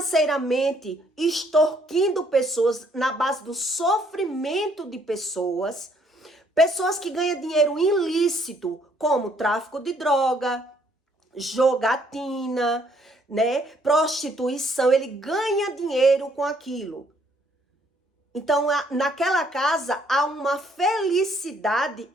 extorquindo pessoas na base do sofrimento de pessoas, pessoas que ganham dinheiro ilícito, como tráfico de droga, jogatina, né, prostituição, ele ganha dinheiro com aquilo. Então, naquela casa há uma felicidade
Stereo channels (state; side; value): normal; both; correlation 0.66